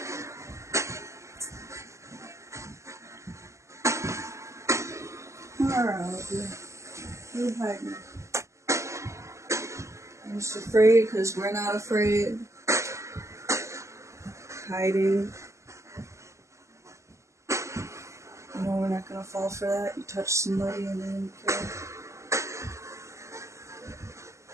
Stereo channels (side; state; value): left; late; 0.14 ms